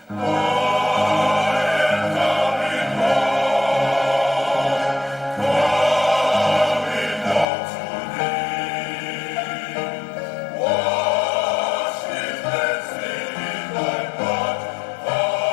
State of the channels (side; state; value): right; drops out; at 7.5 s